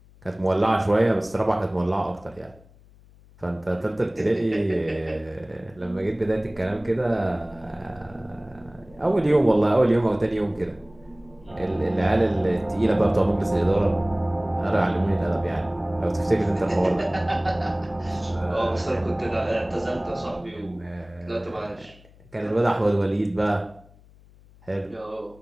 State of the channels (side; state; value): left; noise; hum, 26 dB below the sound